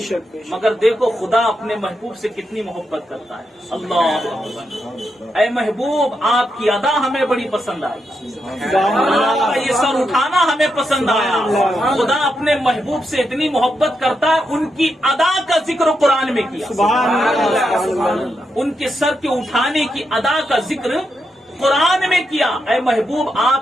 بے شک. مگر دیکھو خدا اپنے محبوب سے کتنی محبت کرتا ہے. اللہ اکبر. اے محبوب آپ کی ادا ہمیں بڑی پسند آئی. آپ کا یہ سر اٹھانا ہمیں پسند آیا. خدا اپنے محبوب سے اتنی محبت کرتا ہے، ان کی ادا کا ذکر قرآن میں کیا. سبحان اللہ. سبحان اللہ. ان کے سر کے اٹھانے کی ادا کا ذکر قرآن میں کیا. اے محبوب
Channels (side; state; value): both; normal; correlation 0.84